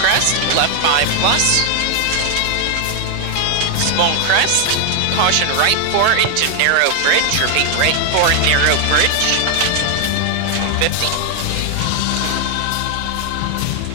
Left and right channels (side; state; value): both; different; correlation 0.00